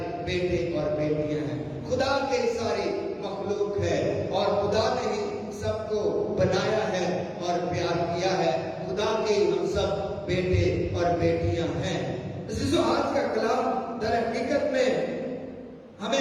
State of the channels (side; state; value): both; identical; correlation 1.00